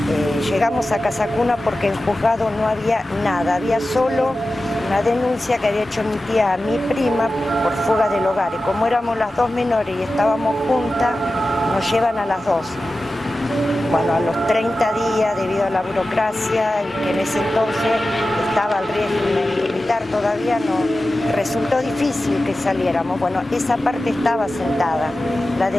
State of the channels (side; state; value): both; normal; correlation 0.94